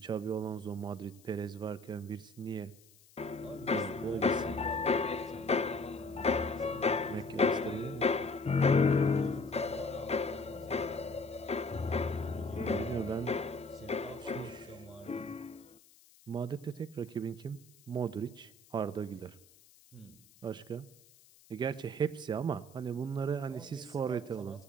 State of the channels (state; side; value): noise; left; hiss, 26 dB below the sound